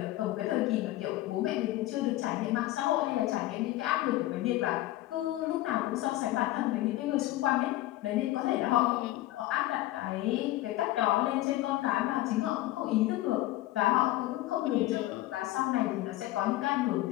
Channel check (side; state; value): right; quieter; 16.5 dB